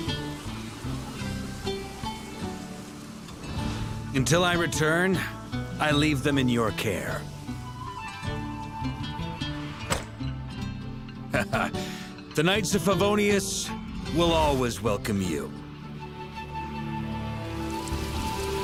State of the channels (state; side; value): identical; both; correlation 1.00